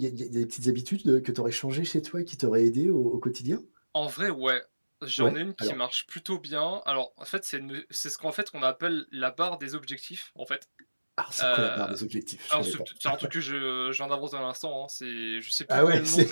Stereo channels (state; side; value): inverted; both; correlation -1.00